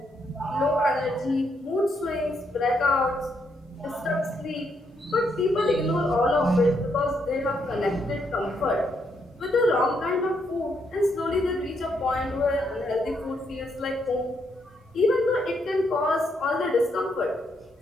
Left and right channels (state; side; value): normal; both; correlation 0.76